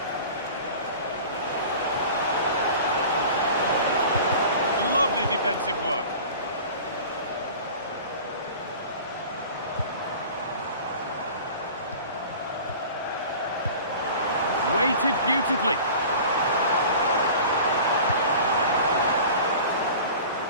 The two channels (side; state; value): both; inverted; correlation -0.40